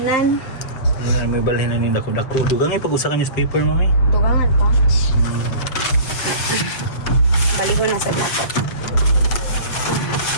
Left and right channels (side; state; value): right; late; 7.5 ms